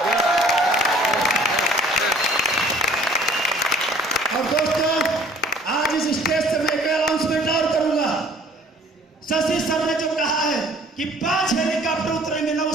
और दोस्तों आज इस स्टेज से मैं एक अनाउंसमेंट और करूंगा। शशि सर ने जो कहा है कि 5 हेलीकॉप्टर उतरेंगे ना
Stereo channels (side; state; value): both; normal; correlation 0.54